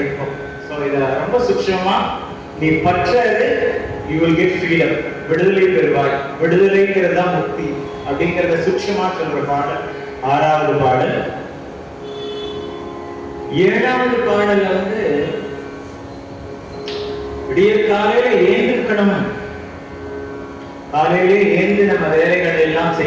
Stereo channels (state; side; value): identical; both; correlation 1.00